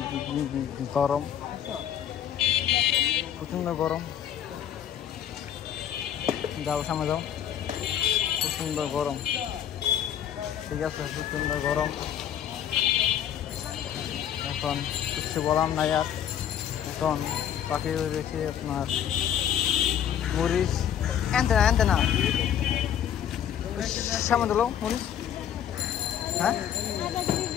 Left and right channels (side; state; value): right; quieter; 9.7 dB